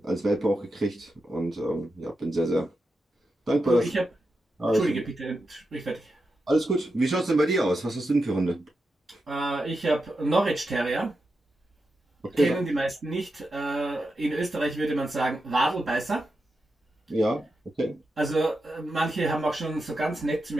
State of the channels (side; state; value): both; normal; correlation 0.88